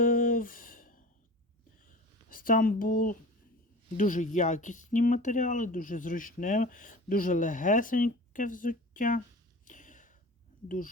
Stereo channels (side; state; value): both; normal; correlation 0.37